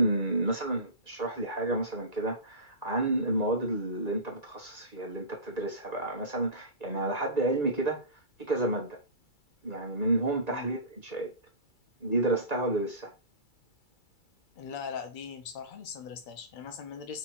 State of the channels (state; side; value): late; right; 2.3 ms